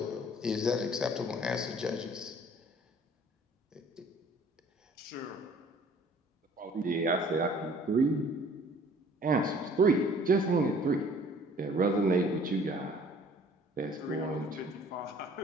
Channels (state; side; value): normal; both; correlation 0.54